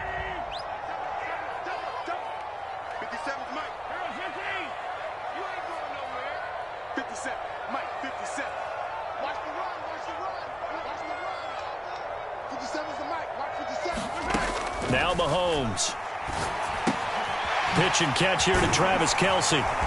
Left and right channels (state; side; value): identical; both; correlation 1.00